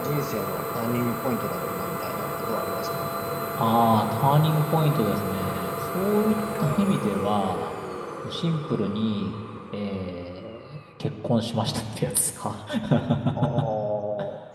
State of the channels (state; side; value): identical; both; correlation 1.00